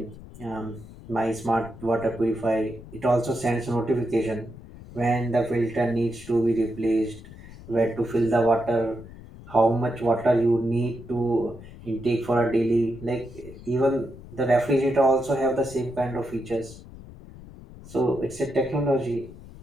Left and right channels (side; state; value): left; noise; rumble, 17 dB below the sound